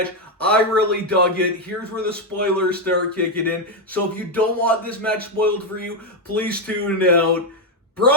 I really dug it. Here's where the spoilers start kicking in. So if you don't want this match spoiled for you, please tune out.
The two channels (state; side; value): normal; both; correlation 0.03